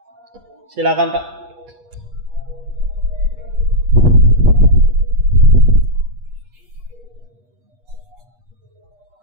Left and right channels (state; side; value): late; left; 8.4 ms